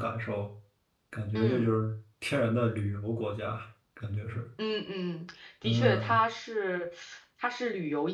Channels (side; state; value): both; identical; correlation 1.00